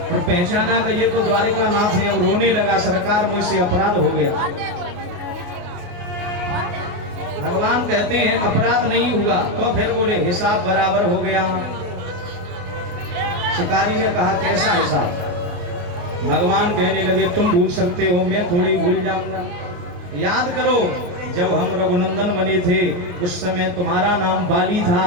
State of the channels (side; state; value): left; late; 28 ms